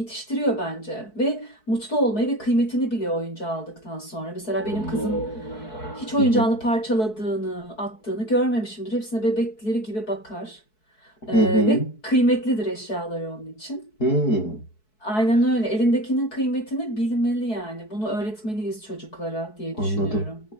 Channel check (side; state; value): right; late; 4.6 ms